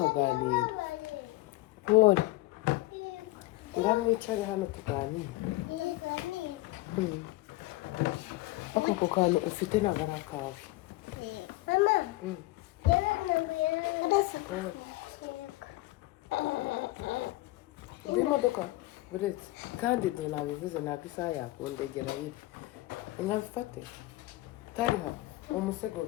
Pole. Ngaho mwicare hano tuganire. Ako kantu ufite ntabwo ari akawe. Mama. Imodoka buretse kandi do nabivuze ntabwo isaha yakundegera iri. Nkabifate. Tariha umusego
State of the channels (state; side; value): quieter; right; 19.3 dB